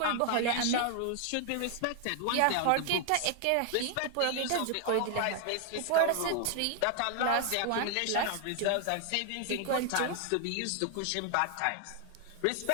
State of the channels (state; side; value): different; both; correlation 0.00